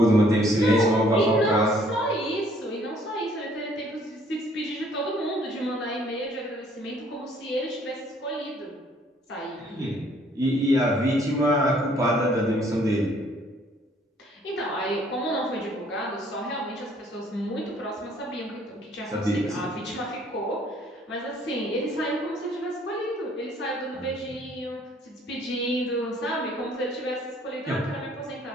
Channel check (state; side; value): normal; both; correlation 0.61